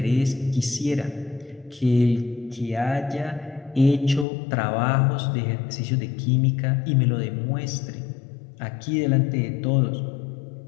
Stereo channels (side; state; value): right; drops out; at 4.2 s